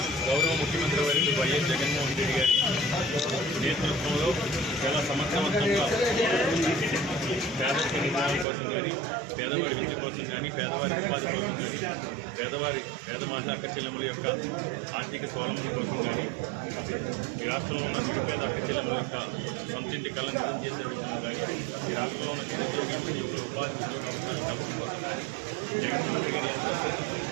గౌరవ ముఖ్యమంత్రి వర్యులు వైఎస్ జగన్మోహన్ రెడ్డి గారి నేతృత్వంలో చాలా సమర్థవంతంగా పేదరిక నిర్మాణం కోసం కానీ పేదవారి విద్య కోసం కానీ పేదవారి ఉపాధి కోసం పేద మహిళా అక్కచెల్లెముల యొక్క ఆర్థిక స్వావలంబన కోసం కానీ రాష్ట్రంలో ఉన్న పేద అక్కచెల్లెముల యొక్క సొంతింటి కళ నిజం చేసే విధంగా కానీ ఈ రాష్ట్రంలో ఉన్న నిరుద్యోగులకు ఉపాధి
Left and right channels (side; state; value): left; drops out; at 8.5 s